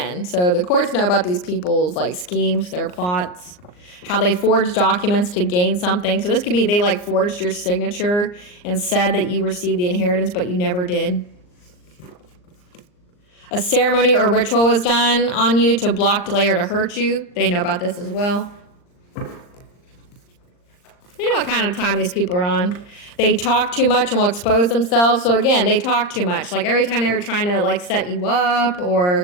So the courts know about these people's like schemes, their plots, how they forged documents to gain something. So this could be they like forged your signature and said that you received the inheritance, but you never did. A ceremony or ritual was done on you to block, delay, or to hurt you. They know about this as well. They know what kind of time these people are on. They talk too much and will expose themselves. So again, they talk too much. Like every time they were trying to like set you up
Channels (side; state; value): right; late; 39 ms